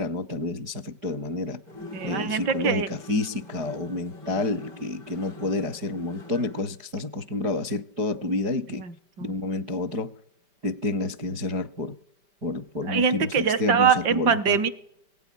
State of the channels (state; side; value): late; left; 5.1 ms